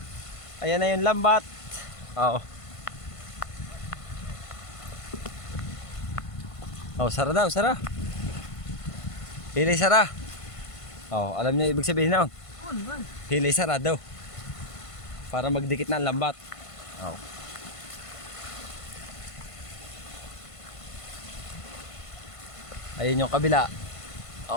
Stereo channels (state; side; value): late; right; 1.5 ms